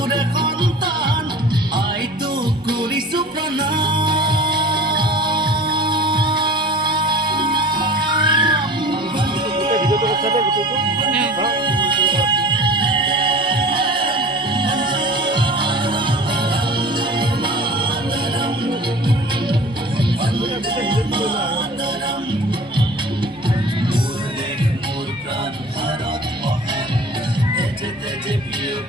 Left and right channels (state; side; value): normal; both; correlation 0.41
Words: সন্তান, আইটোক কৰিছো প্ৰণাম।